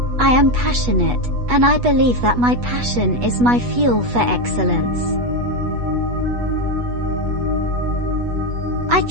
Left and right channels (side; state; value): left; late; 8.2 ms